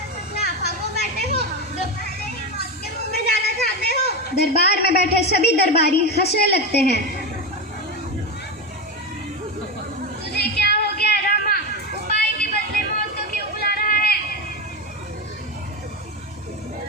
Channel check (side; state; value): both; normal; correlation 0.16